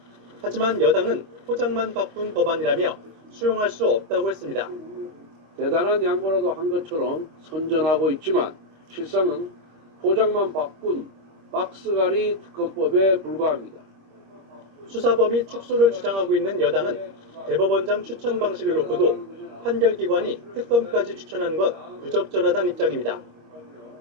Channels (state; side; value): late; left; 26 ms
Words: 하지만 여당은 포장만 바꾼 법안이라며 수용할 수 없다고 했습니다. 대단한 양보라도 한 것처럼 선전하고 있지만 실상은 포장만 바꾼 박스갈이 특검법에 불과합니다. 수사 범위 축소를 주장하고 있는 여당은 대법원장 추천 방식을 놓고도 판결기관이 특검까지 추천하는 건 부적절하다는 입장입니다.